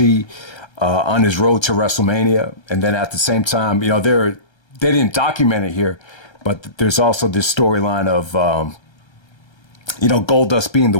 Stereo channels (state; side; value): late; right; 1.3 ms